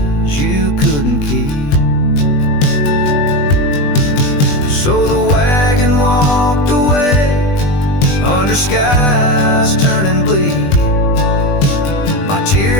you couldn't keep. So the wagon walked away under skies turning bleak. My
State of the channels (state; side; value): late; right; 20 ms